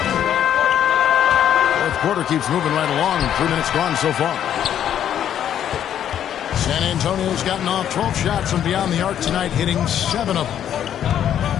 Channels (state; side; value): quieter; right; 10.0 dB